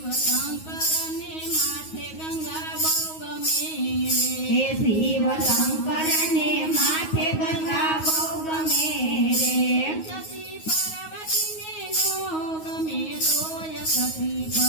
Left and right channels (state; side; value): late; right; 9.4 ms